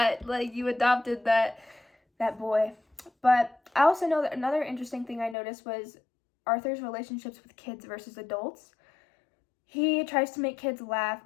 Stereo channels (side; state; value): right; drops out; at 5.4 s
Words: like you adopted that boy. But I also know that another interesting thing I noticed was Arthur's relationships with kids versus adults. He tries to make kids laugh.